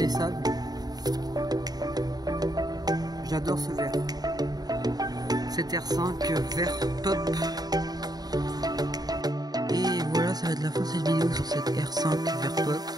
J'adore ce verre. Cette R5 vert pop. Et voilà, ça va être la fin de cette vidéo sur cette R5 vert pop.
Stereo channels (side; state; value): left; late; 0.19 ms